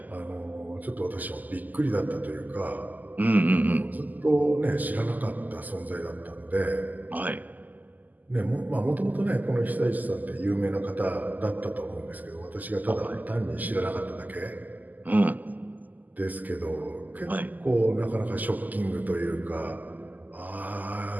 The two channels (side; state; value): left; late; 0.082 ms